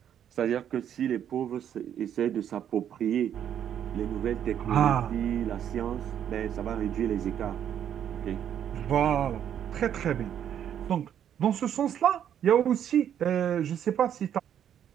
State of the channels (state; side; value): quieter; left; 9.6 dB